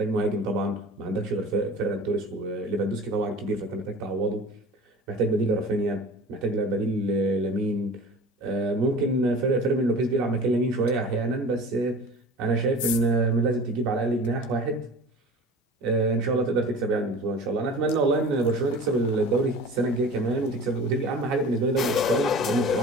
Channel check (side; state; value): both; normal; correlation 0.40